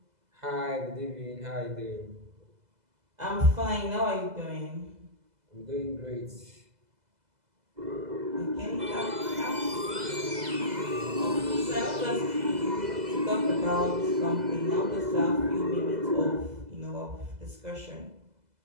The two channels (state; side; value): late; left; 2.0 ms